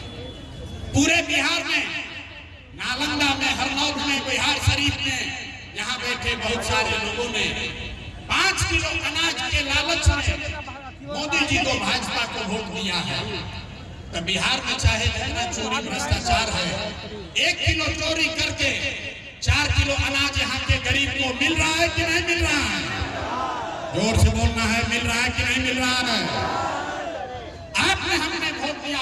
पूरे बिहार में, नालंदा में, हरनौत में, बिहार शरीफ में यहाँ बैठे बहुत सारे लोगों ने 5 किलो अनाज के लालच में मोदी जी को, भाजपा को वोट दिया है। तो बिहार में चाहे जितना चोरी भ्रष्टाचार है, 1 किलो चोरी करके 4 किलो अनाज यहाँ के गरीब को मिल रहा है कि नहीं मिल रहा है? जोर से बोलना है, मिल रहा है कि नहीं मिल रहा है? आपने हमने वोट दिया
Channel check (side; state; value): both; identical; correlation 1.00